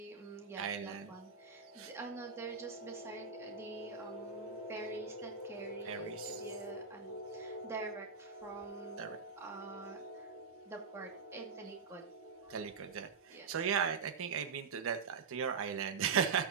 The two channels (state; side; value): quieter; left; 5.5 dB